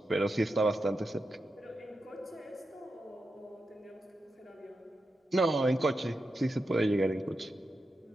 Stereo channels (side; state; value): both; normal; correlation 0.88